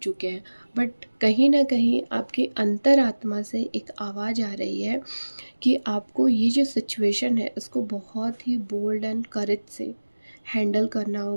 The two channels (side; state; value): both; inverted; correlation -1.00